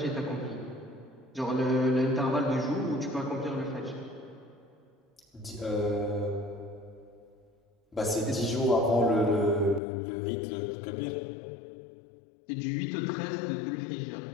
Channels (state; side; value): drops out; right; at 9.8 s